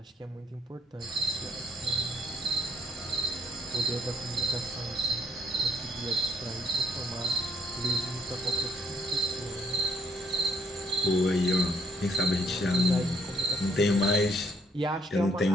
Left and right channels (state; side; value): normal; both; correlation 0.68